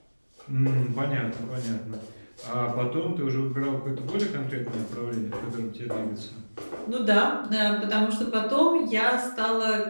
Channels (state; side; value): inverted; both; correlation -1.00